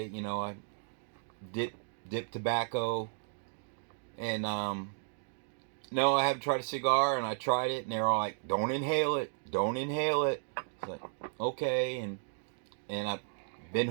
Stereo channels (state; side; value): silent; left; digital silence